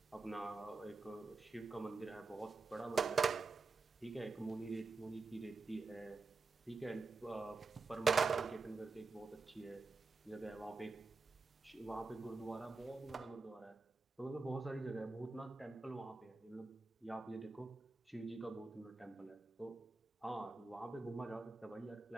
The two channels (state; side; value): quieter; left; 4.0 dB